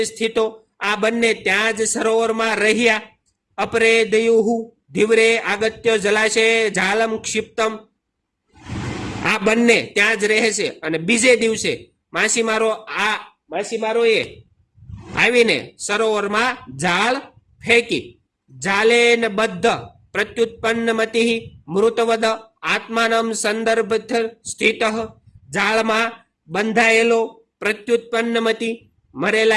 સ્થિતો. આ બંને ત્યાં જ સરોવરમાં રહ્યા. અપરે દયુહુ ધીવરે આગત્ય જલાશય જાલમ ક્ષિપ્તમ. આ બંને ત્યાં જ રહે છે અને બીજે દિવસે માછીમારોએ આવીને સરોવરમાં જાળ ફેંકી. જાલેન બદ્ધ પ્રત્યુત્પન્નમતિ મૃતવદ આત્માનમ સંદર્ભ સ્થિત. જાળમાં બંધાયેલો પ્રત્યુત્પન્નમતી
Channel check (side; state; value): both; identical; correlation 1.00